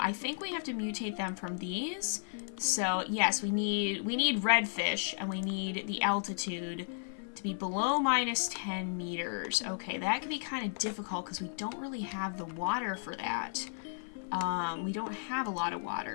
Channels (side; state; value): right; silent; 55 dB below the other